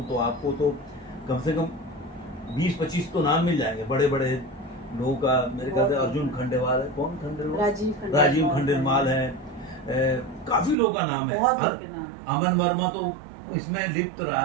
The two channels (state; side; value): drops out; left; at 10.8 s